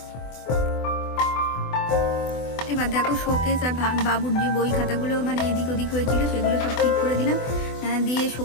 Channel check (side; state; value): right; late; 24 ms